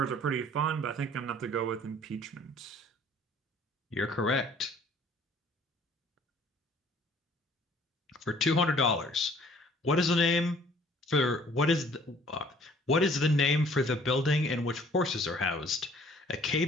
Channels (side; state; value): both; normal; correlation 0.56